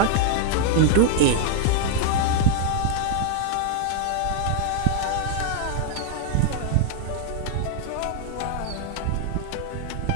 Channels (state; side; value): different; both; correlation 0.00